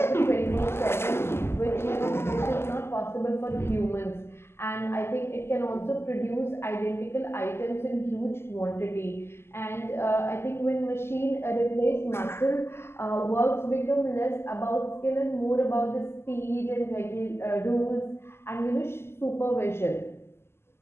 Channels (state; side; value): late; right; 0.12 ms